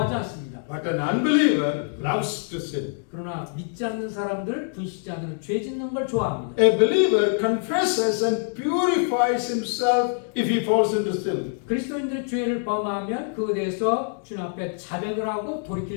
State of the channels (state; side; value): silent; right; digital silence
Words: 않습니다. But an unbeliever loves to sin. 그러나 믿지 않는 사람들, 불신자들은 죄 짓는 걸 좋아합니다. A believer confesses and purifies himself if he falls into sin. 그리스도인들이 죄를 범하면 그에 대해서 주님 앞에 자백을 하고